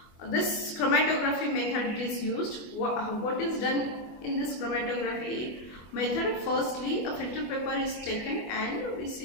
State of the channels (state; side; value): late; right; 24 ms